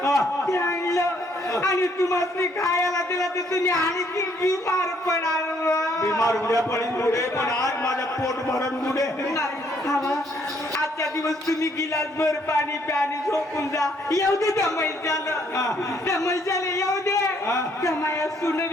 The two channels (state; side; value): normal; both; correlation 0.67